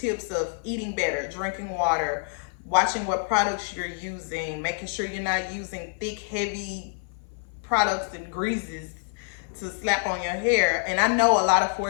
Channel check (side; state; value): right; silent; 56 dB below the other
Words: of eating better, drinking water, watching what products you're using, making sure you're not using thick, heavy products and greases to slap on your hair. And I know a lot of